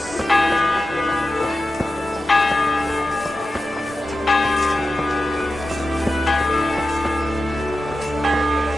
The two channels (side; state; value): right; noise; rumble, 22 dB below the sound